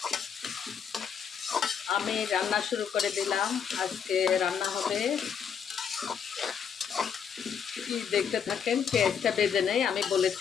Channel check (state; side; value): quieter; right; 7.3 dB